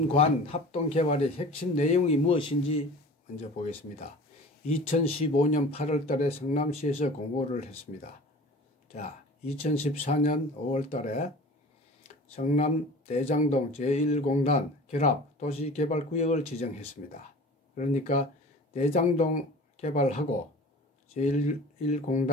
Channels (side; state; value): both; normal; correlation 0.40